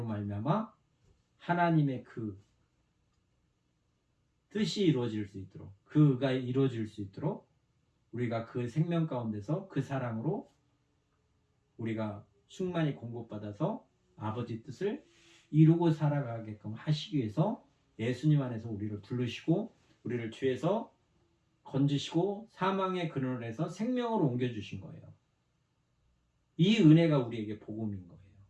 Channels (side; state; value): both; identical; correlation 1.00